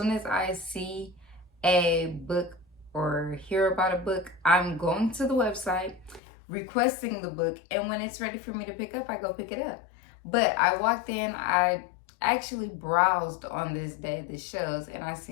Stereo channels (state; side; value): drops out; right; at 6.2 s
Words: as I see a book or hear about a book, I'm going to the website, requesting the book, and when it's ready for me to pick up, I go pick it up. But I walked in, I actually browsed on this day, the shows, and I